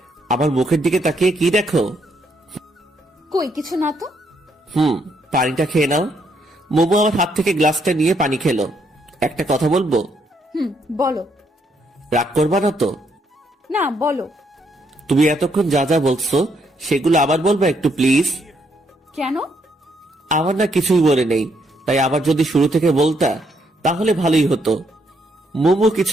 আমার মুখের দিকে তাকিয়ে কি দেখো? কই কিছু না তো। পানিটা খেয়ে নাও। মুমু আমার হাত থেকে গ্লাসটা নিয়ে পানি খেলো। একটা কথা বলবো? বলো। রাগ করবা না তো? না, বলো। তুমি এতক্ষণ যা যা বলছো সেগুলো আবার বলবা একটু প্লিজ। কেন? আমার না কিছুই বলে নেই, তাই আবার যদি শুরু থেকে বলতা তাহলে ভালোই হতো। মুমু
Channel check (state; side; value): normal; both; correlation 0.74